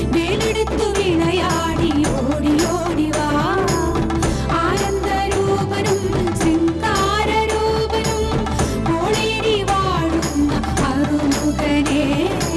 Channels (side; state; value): both; identical; correlation 1.00